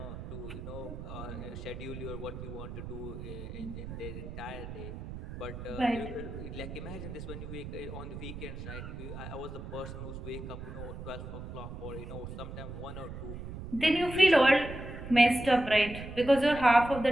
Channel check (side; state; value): right; noise; rumble, 9 dB below the sound